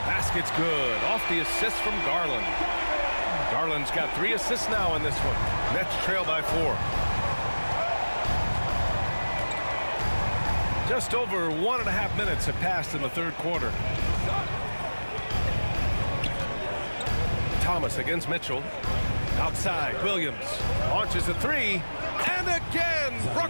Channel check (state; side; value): inverted; both; correlation -1.00